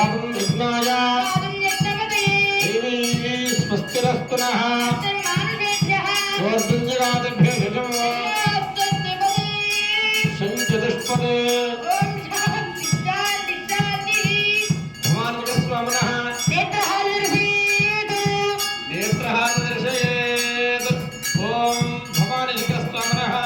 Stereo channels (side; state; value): both; identical; correlation 1.00